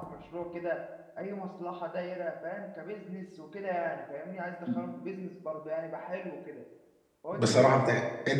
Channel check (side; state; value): both; identical; correlation 1.00